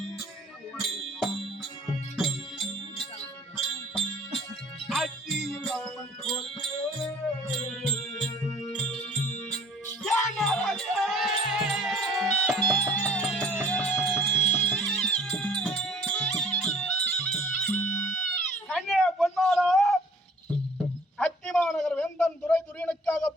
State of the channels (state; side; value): normal; both; correlation 0.52